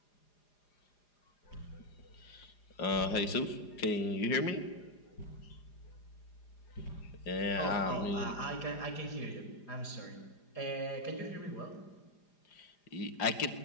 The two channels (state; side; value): late; right; 4.9 ms